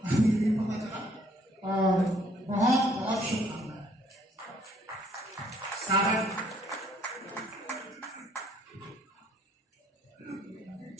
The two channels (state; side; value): normal; both; correlation 0.63